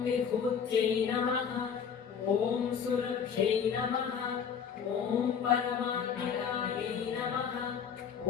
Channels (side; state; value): right; quieter; 7.2 dB